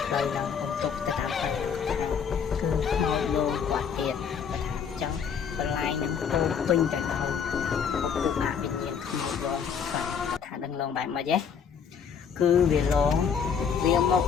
ផ្លូវនឹងអុំទុកទៅតាមផ្លូវគឺខ្មោចលោកគាត់ទៀតគាត់ថាចឹងបន្លែងនឹងពោពេញទៅដោយពុកអវិញ្ញាណខ្មោចលោកគាត់ថានឹងឡងបែបម៉េចទេគឺវាឡងវាមក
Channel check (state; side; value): quieter; right; 7.0 dB